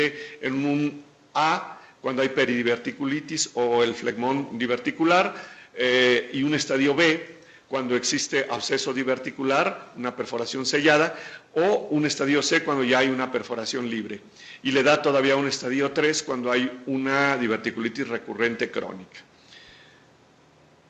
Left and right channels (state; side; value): identical; both; correlation 1.00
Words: en un A cuando hay peridiverticulitis o el flegmón diverticular, y un estadio B cuando existe absceso diverticular, una perforación sellada, o un estadio C cuando ya hay una perforación libre. Y le da todavía un estadio 3 cuando hay una diverticulitis recurrente crónica.